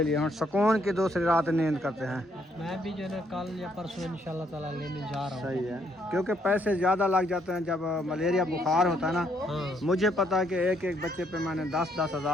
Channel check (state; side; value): normal; both; correlation 0.71